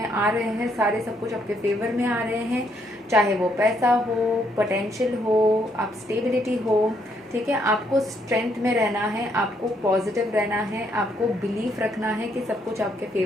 आ रहे हैं, सारे सब कुछ आपके फेवर में आ रहे हैं, चाहे वो पैसा हो, पोटेंशियल हो, आप स्टेबिलिटी हो। ठीक है, आपको स्ट्रेंथ में रहना है, आपको पॉजिटिव रहना है, आपको बिलीफ रखना है कि सब कुछ आपके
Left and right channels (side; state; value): both; normal; correlation 0.72